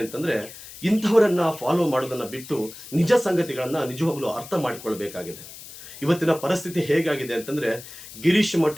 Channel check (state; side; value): noise; left; hiss, 15 dB below the sound